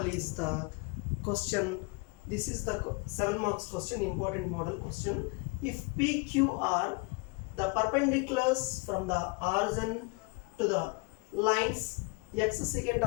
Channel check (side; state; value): right; quieter; 29.9 dB